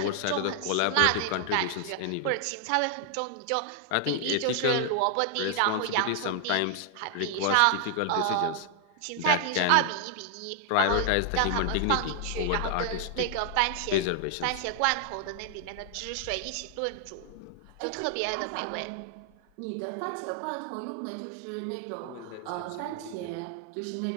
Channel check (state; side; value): different; both; correlation 0.00